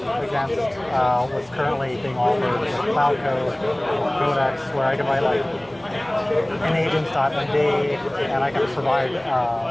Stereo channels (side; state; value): left; noise; hum, 29 dB below the sound